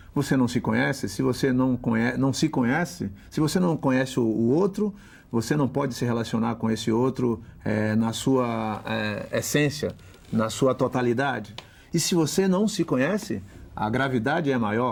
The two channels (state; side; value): identical; both; correlation 1.00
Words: você não se conhece. Se você não se conhece, se você não conhece o outro, você não pode se relacionar com esse outro na sua essência, na sua totalidade. E se você não se conhece, a gravidade é